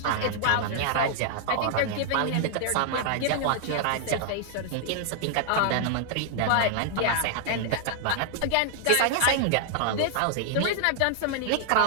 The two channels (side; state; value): both; different; correlation 0.00